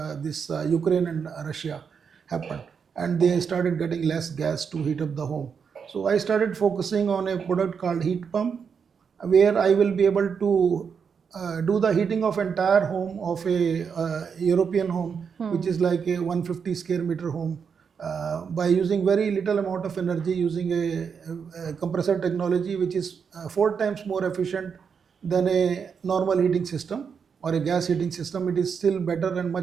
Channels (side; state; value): left; quieter; 6.4 dB